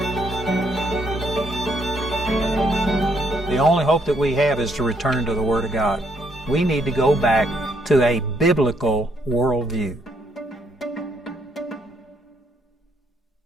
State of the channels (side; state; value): both; normal; correlation 0.72